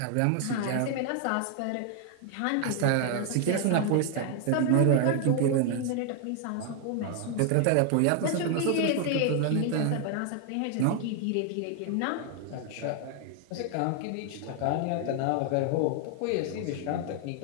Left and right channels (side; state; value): both; different; correlation 0.00